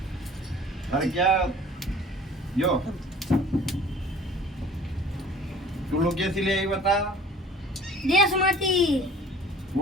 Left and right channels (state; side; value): normal; both; correlation 0.48